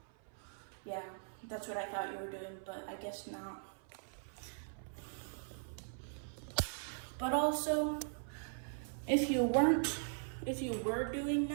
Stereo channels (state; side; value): silent; left; 51 dB below the other